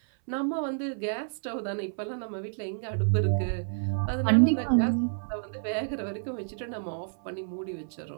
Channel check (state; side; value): silent; left; 58 dB below the other